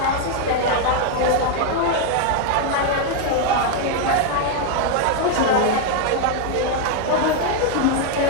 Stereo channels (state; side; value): different; both; correlation 0.01